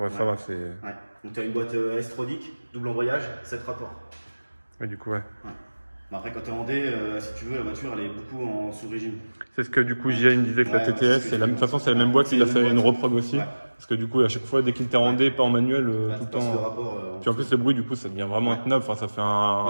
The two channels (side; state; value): both; inverted; correlation -1.00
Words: ça va, c'est. Ouais. Donc t'as une boîte S-Tronic, double embrayage, 7 rapports. Ouais, du coup, ouais. Mais après, quand t'es en D, si tu veux, la voiture, elle est beaucoup en sous-régime. C'est ce que du coup, JA me disait que la Ouais, TTS, c'est de toute façon, c'est la même boîte, il a fait une reprog aussi. Ouais. Parce que du coup, à chaque fois, dès qu'il était en D, pas en manuel, tout le temps. Rapport, Puis en plus, le bruit, du coup, ça devient vraiment intenable. Enfin, ça fait un.